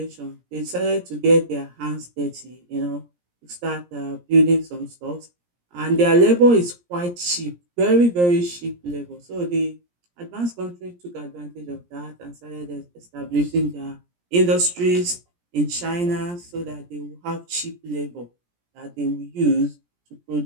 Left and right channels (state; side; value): late; left; 17 ms